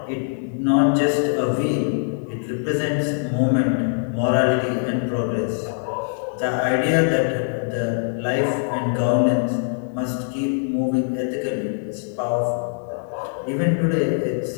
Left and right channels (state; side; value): silent; right; digital silence